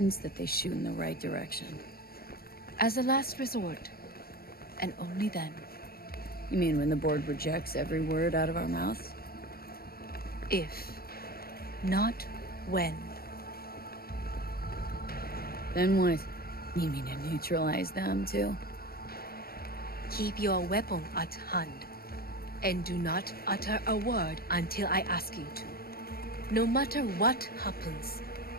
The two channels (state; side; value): late; right; 0.44 ms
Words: that they shoot in the right direction. As a last resort, and only then. You mean when the board rejects every word out of our mouths? If, not when. Then what? You mean to neutralize them, too? Keep your weapon at hand, and do not utter a word until I ask you to. No matter what happens,